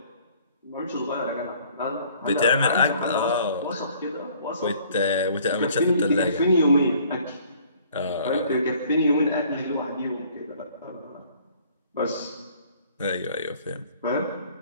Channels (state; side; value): inverted; both; correlation -0.57